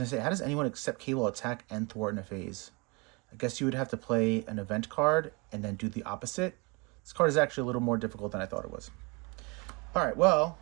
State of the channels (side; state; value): left; quieter; 28.1 dB